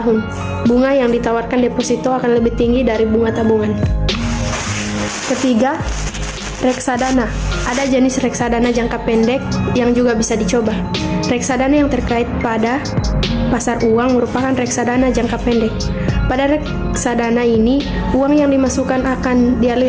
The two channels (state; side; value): identical; both; correlation 1.00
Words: Bunga yang ditawarkan deposito akan lebih tinggi dari bunga tabungan. Ketiga, reksadana. Ada jenis reksadana jangka pendek yang juga bisa dicoba. Reksadana yang terkait pada pasar uang merupakan reksadana jangka pendek. Pada reksadana ini, uang yang dimasukkan akan